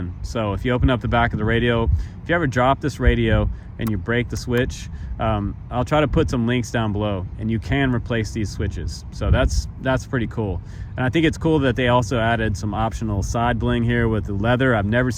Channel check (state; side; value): identical; both; correlation 1.00